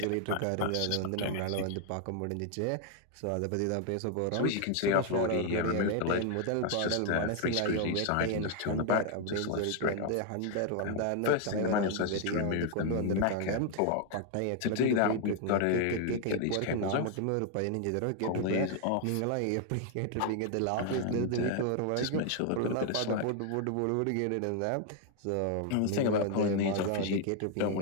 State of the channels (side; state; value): both; different; correlation 0.00